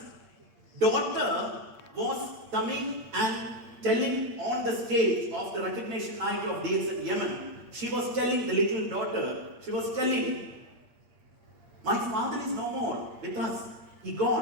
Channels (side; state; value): left; late; 8.6 ms